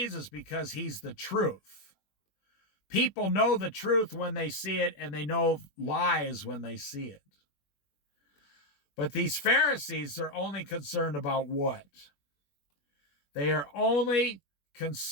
because he's the truth. People know the truth when they see it, and they know lies when they see it. But these Pharisees are only concerned about what? They are only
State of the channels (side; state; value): right; late; 21 ms